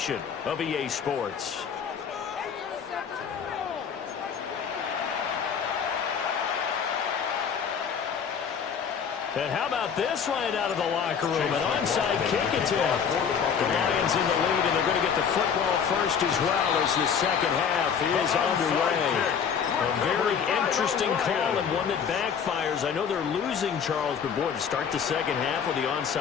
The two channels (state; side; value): quieter; right; 7.1 dB